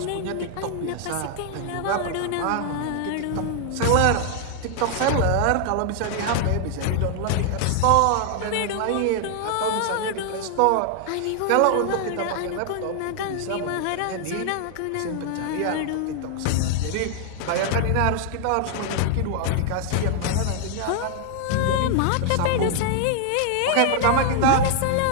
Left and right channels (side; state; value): both; different; correlation 0.00